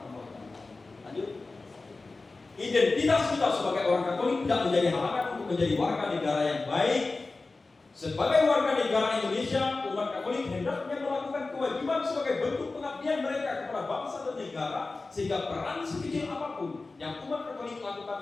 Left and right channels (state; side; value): quieter; right; 3.6 dB